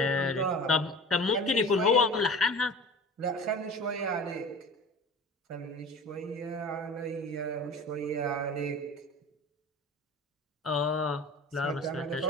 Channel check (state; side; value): normal; both; correlation 0.37